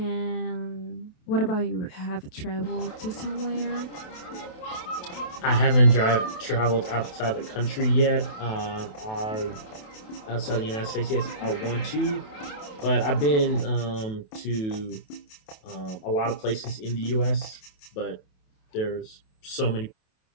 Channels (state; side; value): late; right; 28 ms